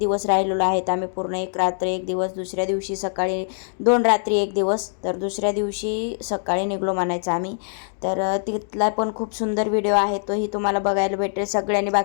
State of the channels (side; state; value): right; silent; digital silence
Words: राहिलेलो आहेत आम्ही, पूर्ण 1 रात्र 1 दिवस, दुसऱ्या दिवशी सकाळी 2 रात्री 1 दिवस, तर दुसऱ्या दिवशी सकाळी निघलो म्हणायचं आम्ही. तर तिथला पण खूप सुंदर व्हिडिओ आहे, तोही तुम्हाला बघायला भेटेल. सगळ्यांनी